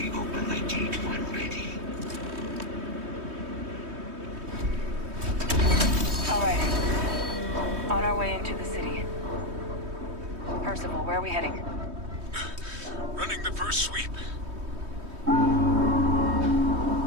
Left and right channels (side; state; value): left; late; 3.2 ms